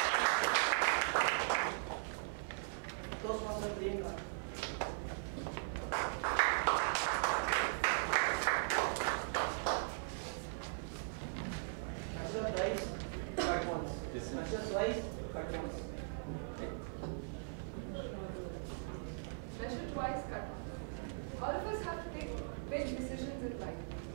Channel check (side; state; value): left; silent; 51 dB below the other